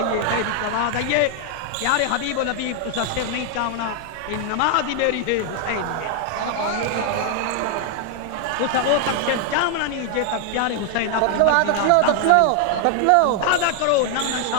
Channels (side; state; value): both; different; correlation 0.00